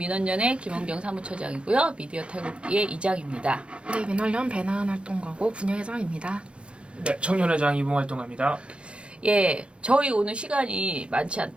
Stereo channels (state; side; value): late; left; 0.058 ms